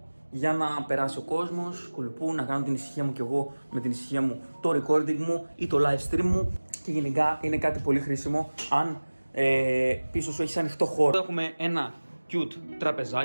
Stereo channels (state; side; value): inverted; both; correlation -1.00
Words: για να περάσει ο κόσμος, κουλπού, να κάνω την ησυχία μου κι εγώ με την ησυχία μου, το recording μου ή το live stream μου. Και γενικά είναι κάτι πολύ χρήσιμο αν πίσω σου έχεις ανοιχτό χώρο. Έχουμε ένα cute